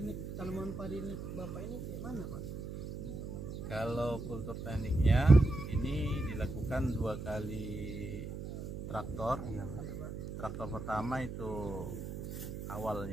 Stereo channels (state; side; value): noise; right; hum, 7 dB below the sound